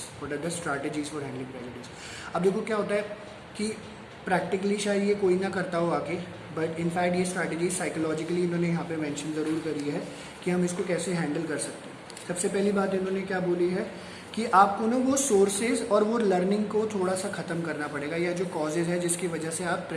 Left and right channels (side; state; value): both; identical; correlation 1.00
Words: what are the strategies for handling prejudice. अब देखो क्या होता है कि प्रैक्टिकली शायद ये कोई ना करता हो आके, बट इनफैक्ट ये स्ट्रैटेजीज साइकोलॉजिकली इन्होंने यहाँ पे मेंशन ज़रूर करी है कि हम इसको कैसे हैंडल कर सकते हैं। सबसे पहली बात इन्होंने क्या बोली है कि आपको ना वो सोर्सेज और वो लर्निंग को थोड़ा सा ख़त्म करना पड़ेगा, या जो कॉजेज़ है जिसकी वजह से आप